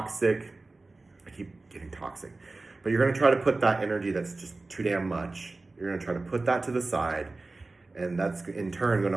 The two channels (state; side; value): quieter; left; 3.3 dB